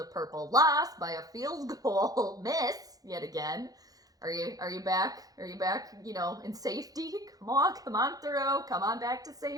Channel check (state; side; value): late; left; 0.18 ms